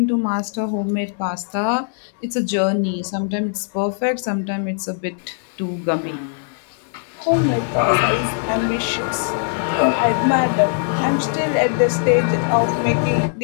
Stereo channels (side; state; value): right; silent; digital silence